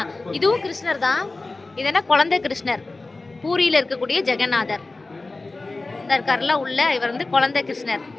இதுவும் கிருஷ்ணர் தான். இது என்ன, குழந்தை கிருஷ்ணர். பூரியில இருக்கக்கூடிய ஜெகநாதர் இந்த இருக்காருல உள்ள, இவர் வந்து குழந்தை கிருஷ்ணர்.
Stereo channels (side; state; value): right; quieter; 3.3 dB